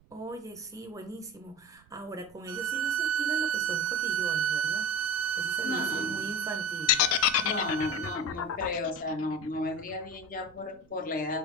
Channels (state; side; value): noise; right; rumble, 29 dB below the sound